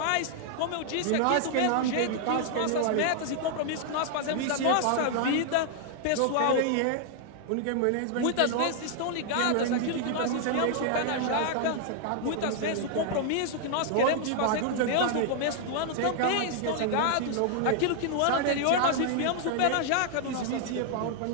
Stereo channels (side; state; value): both; different; correlation 0.00